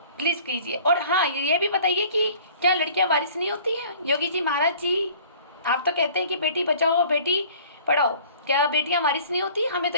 प्लीज़ कीजिए। और हाँ, ये भी बताइए कि क्या लड़कियां वारिस नहीं होती हैं? योगी जी महाराज जी, आप तो कहते हैं कि बेटी बचाओ बेटी पढ़ाओ, क्या बेटियां वारिस नहीं होती? हमें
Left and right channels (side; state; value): both; inverted; correlation -0.50